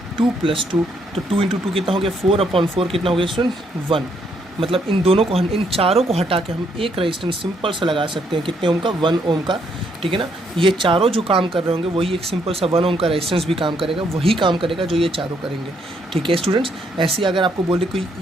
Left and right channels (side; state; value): both; normal; correlation 0.72